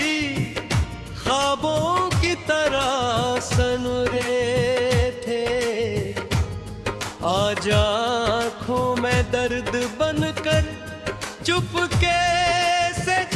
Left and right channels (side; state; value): both; identical; correlation 1.00